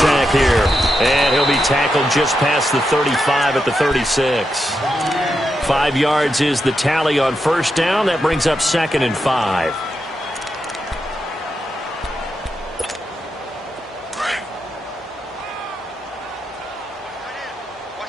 here. And he'll be tackled just past the 35 at the 36. 5 yards is the tally on first down. That brings up 2nd and 5.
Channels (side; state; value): both; normal; correlation 0.85